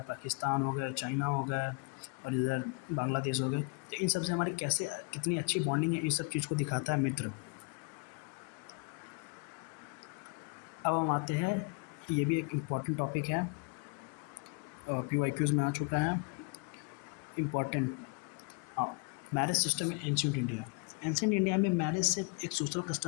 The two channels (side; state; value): right; quieter; 31.9 dB